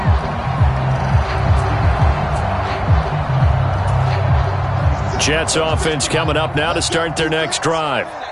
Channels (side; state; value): both; identical; correlation 1.00